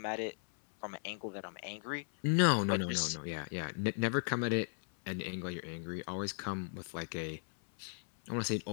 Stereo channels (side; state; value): right; silent; 53 dB below the other